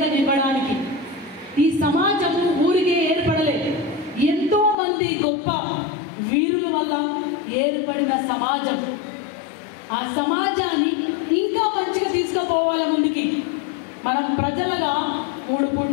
ఇవ్వడానికి. ఈ సమాజం ఊరికే ఏర్పడలేదు, ఎంతో మంది గొప్ప వీరుల వల్ల ఏర్పడిన సమాజం. ఆ సమాజాన్ని ఇంకా మంచిగా తీసుకుపోవాలి ముందుకి. మనం ప్రజలుగా 3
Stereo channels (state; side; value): drops out; right; at 4.8 s